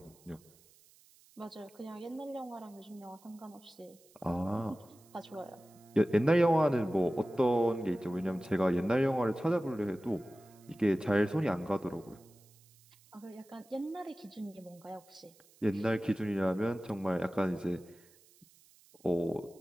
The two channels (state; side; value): noise; right; hiss, 28 dB below the sound